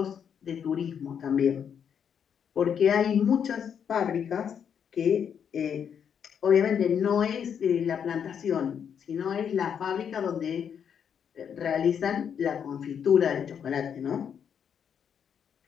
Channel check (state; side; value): quieter; right; 7.8 dB